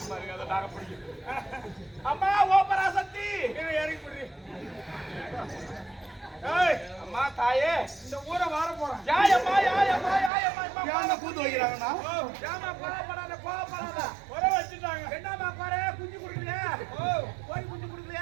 அம்மா ஓ பராசக்தி இறங்கி பிடி அம்மா தாயே இந்த ஊரை வார போறேன் யாயம்மா யாயம்மா யாயம்மா யானை கூத்து வைக்கிறாங்கண்ணா ஏமா கோவப்படாத கோவப்படாத குறை வச்சுட்டாங்க என்னம்மா குறை குஞ்சு கொடுக்கலையா கோழி குஞ்சு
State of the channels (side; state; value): left; drops out; at 10.3 s